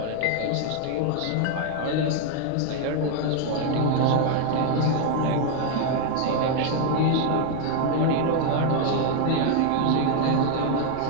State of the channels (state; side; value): different; both; correlation 0.00